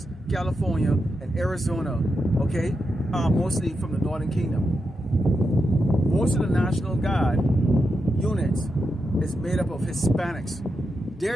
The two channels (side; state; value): both; normal; correlation 0.86